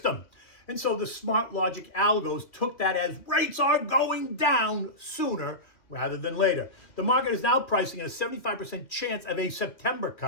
And so the smart logic algos took that as rates are going down sooner rather than later. The market is now pricing in a 75% chance of a September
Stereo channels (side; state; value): right; late; 2.5 ms